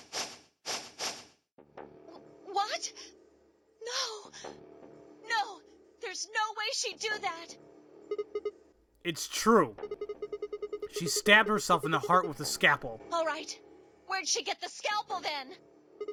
What? No, there's no way she'd do that. It's true. She stabbed herself in the heart with a scalpel. All right. Where'd she get the scalpel then?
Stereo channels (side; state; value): both; identical; correlation 1.00